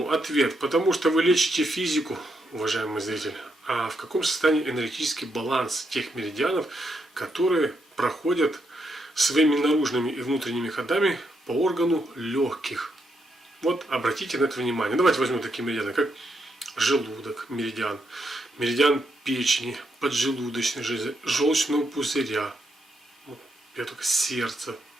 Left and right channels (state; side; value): normal; both; correlation 0.80